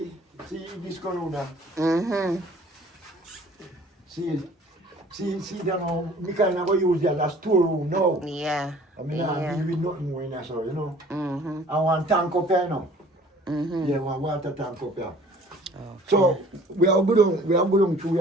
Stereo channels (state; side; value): normal; both; correlation 0.52